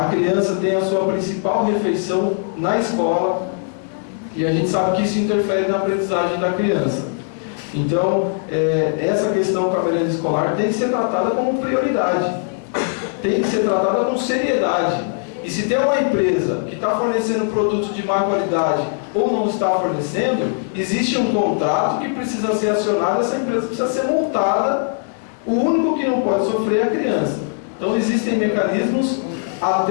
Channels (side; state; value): right; silent; 66 dB below the other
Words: criança tem a sua principal refeição na escola, e a gente sabe que isso interfere na aprendizagem da criança. Então, essa questão com a merenda escolar tem que ser tratada como prioridade, tem que ser tratada com seriedade. E se tem uma empresa que está fornecendo produtos de má qualidade ou não está fornecendo, existe um contrato que precisa ser acionado, essa empresa precisa ser multada, o único que não pode sofrer é a criança. Então existem mecanismos